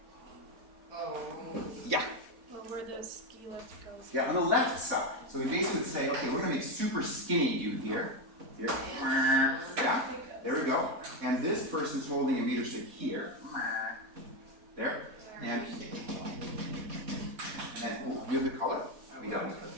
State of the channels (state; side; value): late; left; 4.1 ms